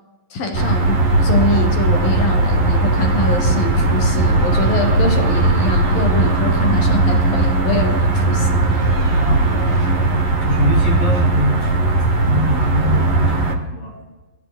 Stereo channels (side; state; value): right; late; 11 ms